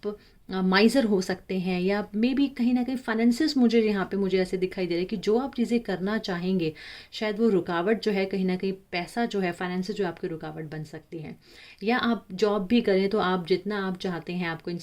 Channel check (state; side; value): identical; both; correlation 1.00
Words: माइज़र हो सकते हैं, या मे बी कहीं ना कहीं फाइनेंसिस मुझे यहाँ पे मुझे ऐसे दिखाई दे रहा है कि जो आप चीज़ें करना चाहेंगे शायद वो रुकावट जो है, कहीं ना कहीं पैसा जो है, फाइनेंसिस जो आपकी रुकावट बन सकती है। या आप जॉब भी करें तो आप जितना आप चाहते हैं, आपको